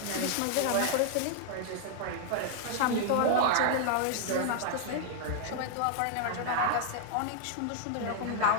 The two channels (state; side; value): different; both; correlation -0.01